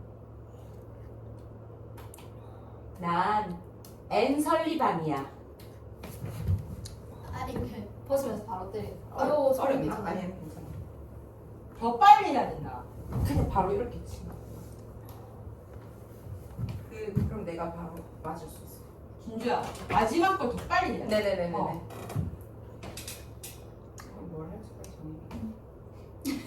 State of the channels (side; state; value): both; identical; correlation 1.00